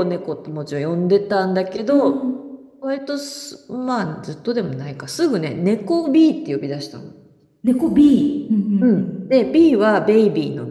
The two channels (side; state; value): both; identical; correlation 1.00